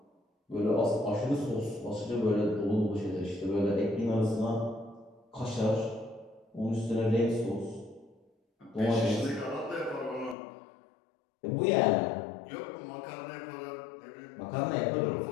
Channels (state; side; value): drops out; right; at 10.4 s